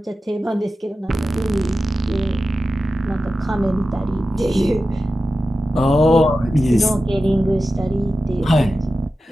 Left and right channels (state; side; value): normal; both; correlation 0.93